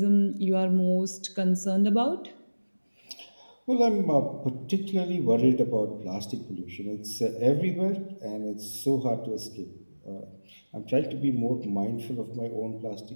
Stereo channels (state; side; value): inverted; both; correlation -1.00